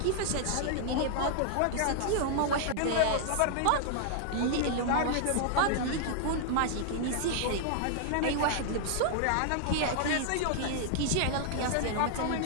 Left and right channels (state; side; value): different; both; correlation -0.01